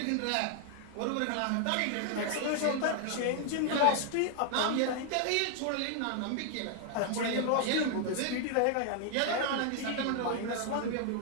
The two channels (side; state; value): both; different; correlation 0.00